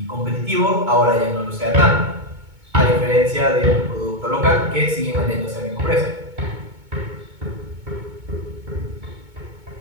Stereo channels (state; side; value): late; left; 2.2 ms